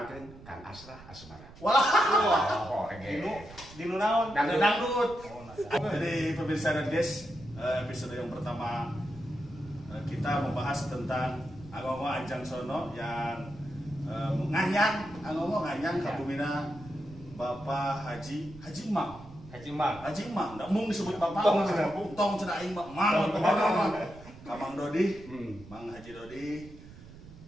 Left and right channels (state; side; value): noise; right; rumble, 18 dB below the sound